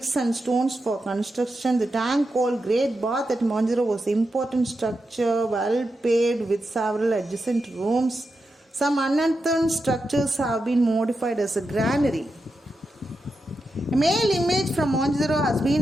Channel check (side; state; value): both; normal; correlation 0.88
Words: and stones for construction. The tank called Great Bath at Mohenjo-daro was an important structure, well paved with several adjacent rooms. Some unearthed structures have been modified as a granary. A male image from Mohenjo-daro has been